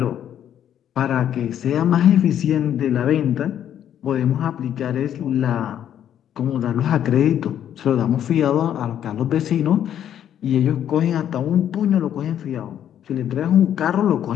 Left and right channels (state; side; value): quieter; right; 10.1 dB